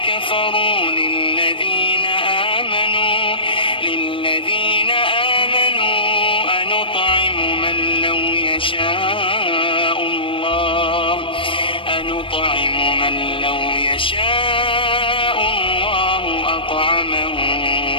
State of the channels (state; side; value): late; right; 0.25 ms